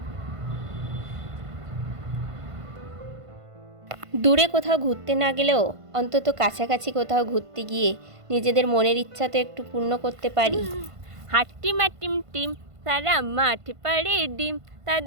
দূরে কোথাও ঘুরতে না গেলেও অন্তত কাছাকাছি কোথাও ঘুরতে গিয়ে নিজেদের মনের ইচ্ছা তো একটু পূর্ণ করতে পারি। হাট্টি মাটিম টিম, তারা মাঠ পাড়ে ডিম,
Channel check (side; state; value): left; late; 1.5 ms